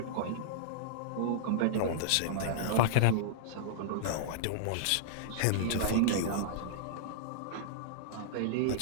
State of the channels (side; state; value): both; different; correlation -0.02